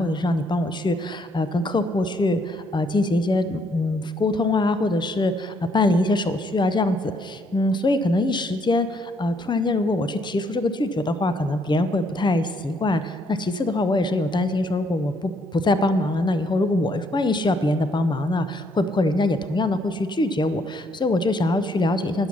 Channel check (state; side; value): normal; both; correlation 0.70